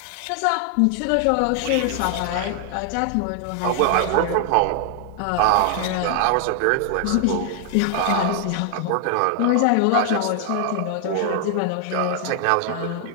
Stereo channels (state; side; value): different; both; correlation 0.00